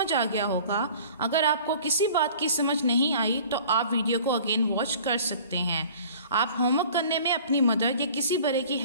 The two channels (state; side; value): inverted; both; correlation -0.47